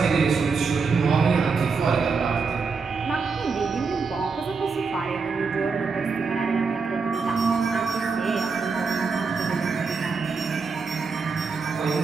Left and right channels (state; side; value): quieter; left; 4.9 dB